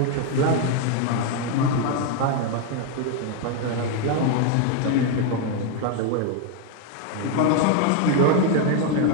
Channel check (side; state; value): both; different; correlation 0.01